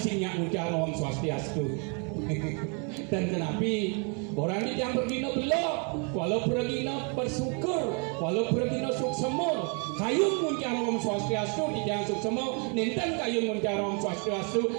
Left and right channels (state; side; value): quieter; left; 36.7 dB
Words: ucaran Om Swastiastu. Dan kenapi orang ini yang bergino belok walau bergino bersyukur walau bergino suksemur kayun muncar Om Swastiastu di jangan suksemur ninten kayun muncar Om Swastiastu